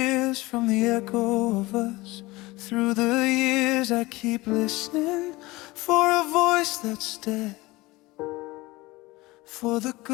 from the echo of us. Through the years I keep listening for a voice that's dead, for the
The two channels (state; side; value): quieter; right; 21.0 dB